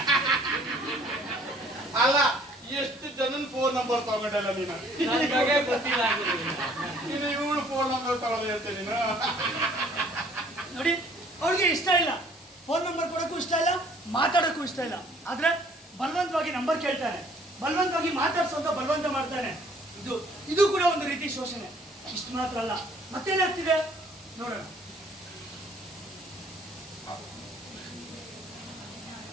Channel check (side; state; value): both; normal; correlation 0.58